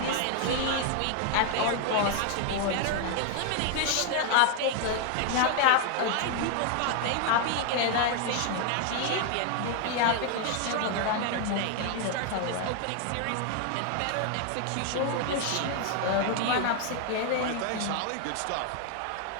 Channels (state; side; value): different; both; correlation 0.00